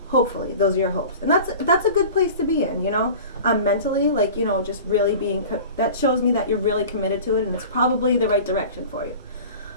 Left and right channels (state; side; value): inverted; both; correlation -0.39